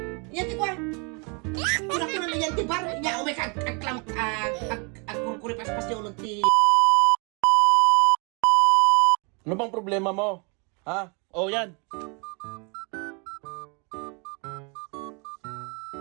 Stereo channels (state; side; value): quieter; left; 33.6 dB